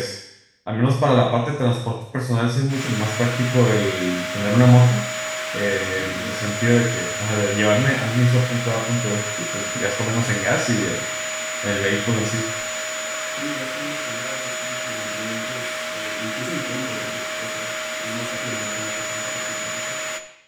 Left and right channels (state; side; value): identical; both; correlation 1.00